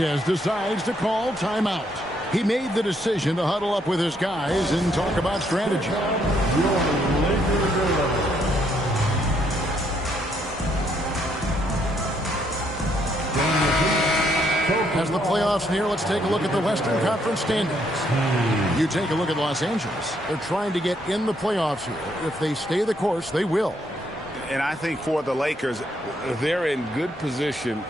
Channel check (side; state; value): both; normal; correlation 0.72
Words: decides to call timeout. He made the decision to huddle up with his guys and talk about strategy. As the playoffs near, let's take a look at the Western Conference standings. You take a look at Los Angeles. They're trying to get in the playoffs here. If they stay the course, they will. And I think for the Lakers, they're in good position,